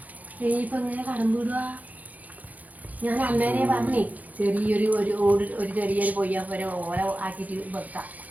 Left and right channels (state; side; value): late; left; 0.078 ms